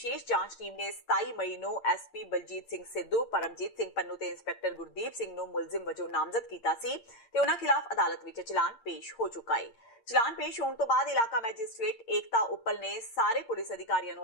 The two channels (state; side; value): late; right; 8.7 ms